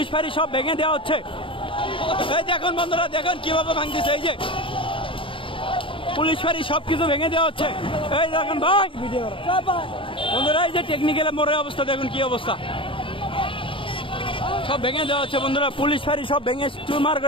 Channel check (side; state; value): right; late; 0.25 ms